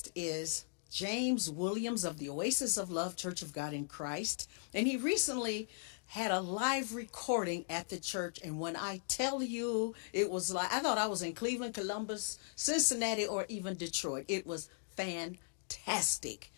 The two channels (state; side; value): silent; right; digital silence